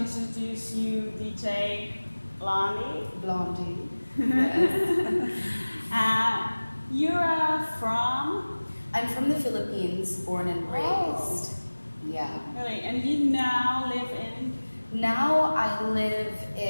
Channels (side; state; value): both; inverted; correlation -1.00